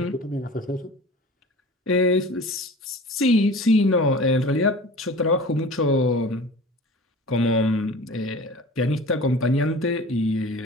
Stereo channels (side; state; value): both; normal; correlation 0.39